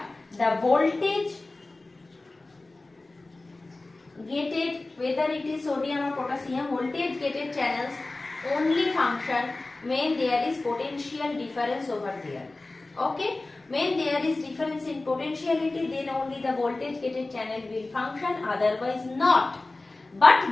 the voltage gated, whether it is sodium or potassium, voltage gated channels only function when there is potential difference over there. Okay. When there is difference in potentiality, then only the voltage gated channel will function, otherwise not. But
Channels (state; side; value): quieter; right; 3.1 dB